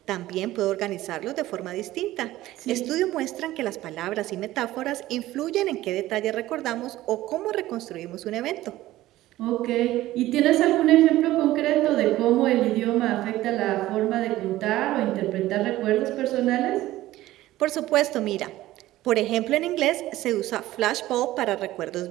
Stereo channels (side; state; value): left; quieter; 15.9 dB